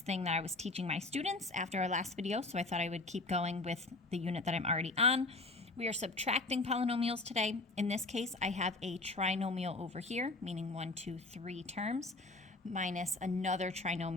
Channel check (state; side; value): quieter; right; 3.1 dB